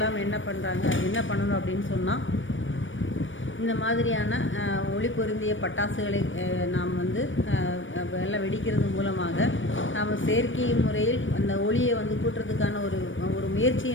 என்ன பண்ணணும் அப்படின்னு சொன்னால், இந்த மாதிரியான ஒளி பொருந்திய பட்டாசுகளை நாம் எல்லாம் வெடிக்கிறது மூலமாக நாம் செயற்கை முறையில் அந்த ஒளியை கூட்டுறதுக்கான ஒரு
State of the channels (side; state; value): right; late; 0.56 ms